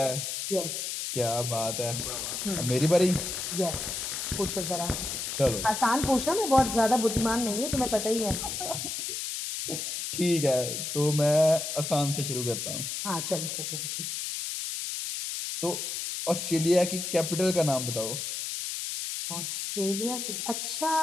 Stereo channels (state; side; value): noise; left; hiss, 4 dB below the sound